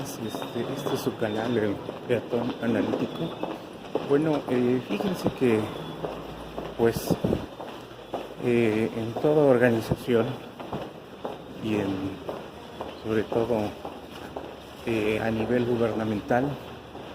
este es su canal, el Peatón Analítico. Bueno, fíjense que pues en toda organización y sobre todo a nivel gubernamental,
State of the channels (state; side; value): identical; both; correlation 1.00